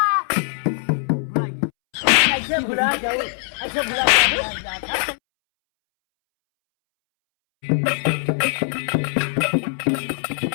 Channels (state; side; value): silent; right; 65 dB below the other